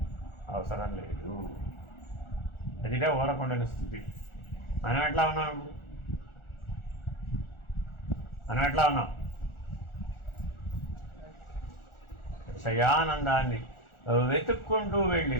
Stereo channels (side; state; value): right; late; 1.4 ms